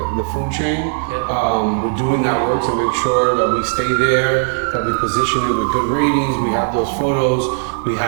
food chain. We're doing that work to make sure that we stay there, that we position it with good ratings. We have those photos. We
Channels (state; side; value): silent; left; 68 dB below the other